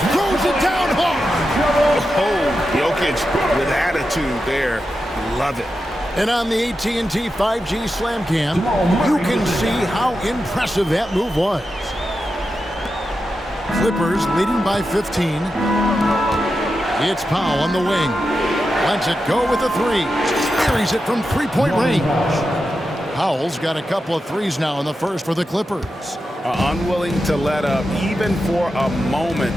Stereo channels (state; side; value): normal; both; correlation 0.89